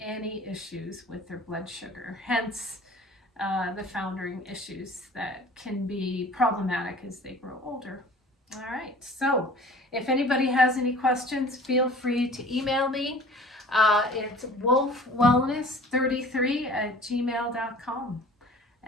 issues with their blood sugar, hence the foundering issues that can be problematic as they grow older. All right, so if anybody has any questions, feel free to email me. It's wolfwellness33@gmail.com.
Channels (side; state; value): both; normal; correlation 0.46